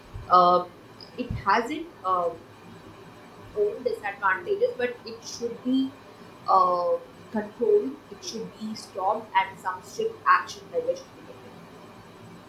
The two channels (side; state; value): both; identical; correlation 1.00